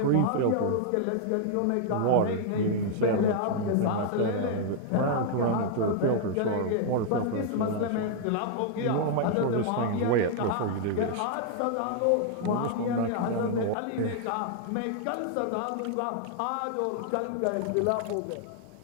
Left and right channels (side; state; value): both; different; correlation -0.01